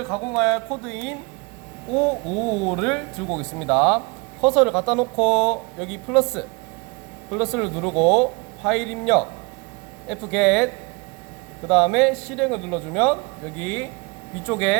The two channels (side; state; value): left; quieter; 29.0 dB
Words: 가공할 코드인 555를 들고 오겠습니다. 커서를 갖다 놓고 여기 플러스를 누르고 파일 입력 fget, 그 다음에 실행을 눌러주면 여기